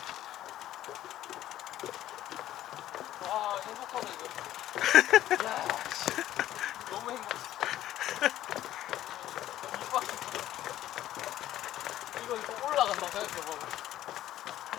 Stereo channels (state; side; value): quieter; right; 13.3 dB